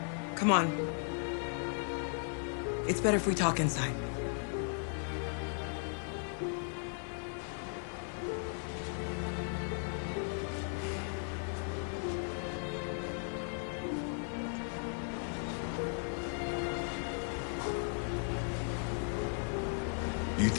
Come on. It's better if we talk inside. Do you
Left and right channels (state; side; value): silent; right; 53 dB below the other